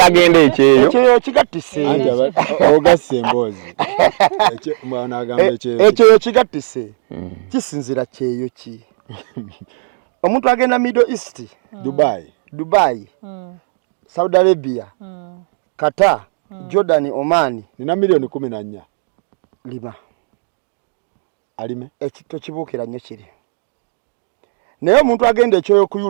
agende ekyeyo kigattise anti ogasse emboozi n'agamba ekyeyo kigattise kisinzira kyeyo ki omuntu agenda Middle East Dubai Saudi Arabia Qatar Jordan Oman nina miliyoni 14 lima alime ekito kibuukira nnyo kiri naye omuntu agenda ekyoyo ku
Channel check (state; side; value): silent; left; digital silence